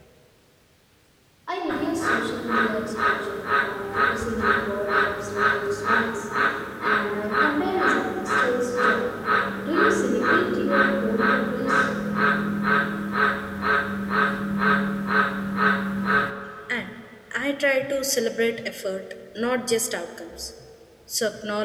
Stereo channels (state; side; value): identical; both; correlation 1.00